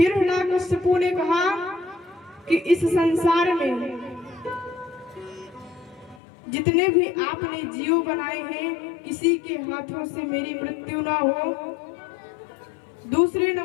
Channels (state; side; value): drops out; right; at 6.2 s